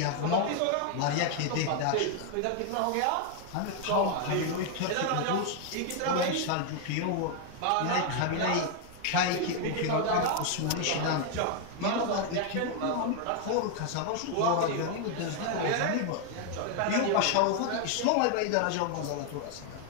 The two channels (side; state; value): both; different; correlation 0.00